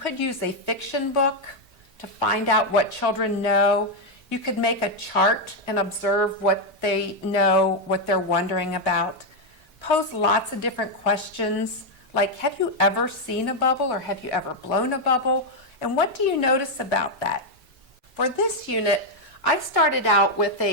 use a fiction book to find out what children know. You could make a chart and observe what they know, what they're wondering about. Pose lots of different questions, like have you ever seen a bubble or have you ever blown a bubble? And what do you notice about that? For this unit, I started out with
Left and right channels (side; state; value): both; normal; correlation 0.02